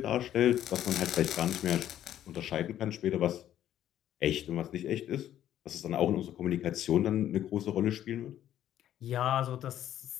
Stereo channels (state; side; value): quieter; right; 11.5 dB